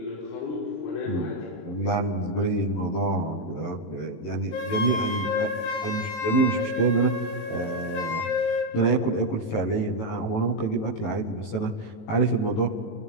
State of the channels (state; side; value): late; right; 18 ms